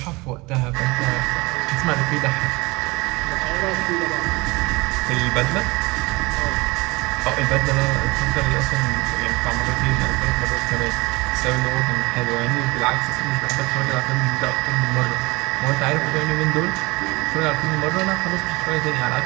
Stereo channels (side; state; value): left; quieter; 23.7 dB